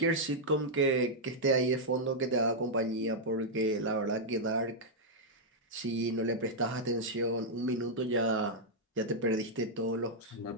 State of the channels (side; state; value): both; normal; correlation -0.06